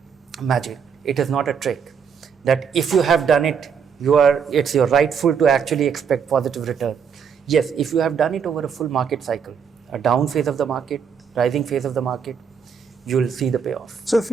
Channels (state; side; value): quieter; left; 6.8 dB